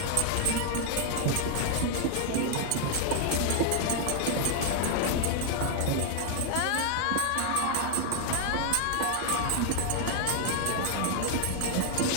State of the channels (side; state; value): both; different; correlation 0.00